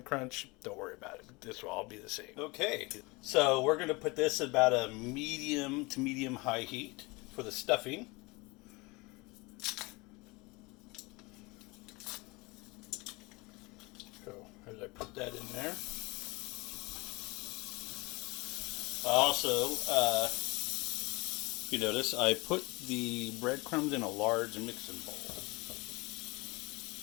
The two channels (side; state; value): right; quieter; 25.3 dB